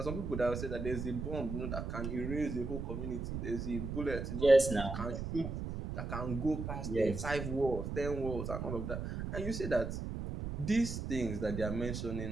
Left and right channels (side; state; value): right; noise; rumble, 4 dB below the sound